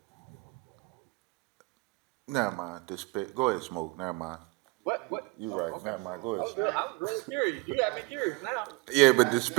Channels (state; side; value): quieter; left; 23.8 dB